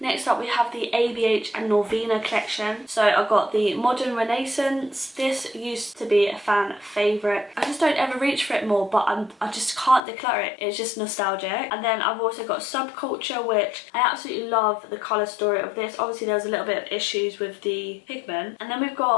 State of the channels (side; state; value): right; drops out; at 10.0 s